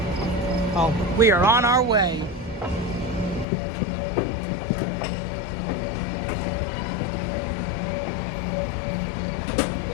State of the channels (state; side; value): drops out; right; at 3.5 s